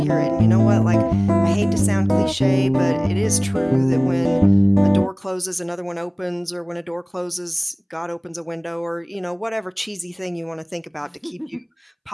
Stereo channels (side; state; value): both; identical; correlation 1.00